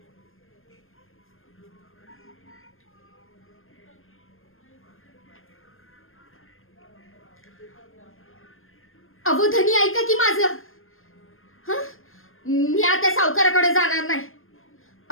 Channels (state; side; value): late; right; 0.60 ms